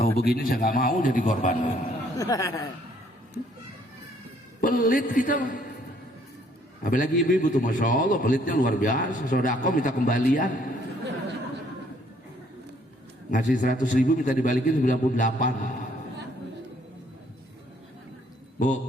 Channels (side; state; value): both; normal; correlation 0.64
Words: Tahu begini saya nggak mau jadi korban. Pelit kita. Apalagi ibu-ibu tuh Masya Allah pelitnya luar biasa. Sodako minta kembalian. Ngasih 100.000 minta dibalikin 98.